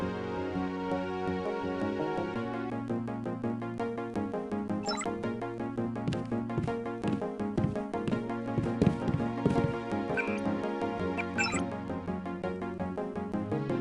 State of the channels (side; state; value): both; identical; correlation 1.00